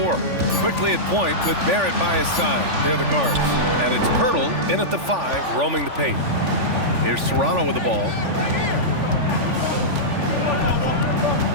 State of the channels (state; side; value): late; left; 3.5 ms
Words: Quickly at point with Barrett by his side. They're the guards. And it's Pirtle in at the 5, roaming the paint. Here's Toronto with the ball.